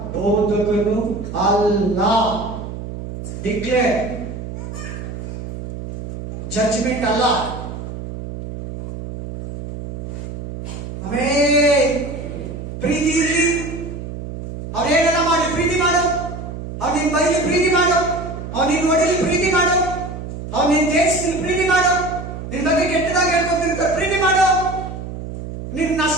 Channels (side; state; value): right; noise; hum, 8 dB below the sound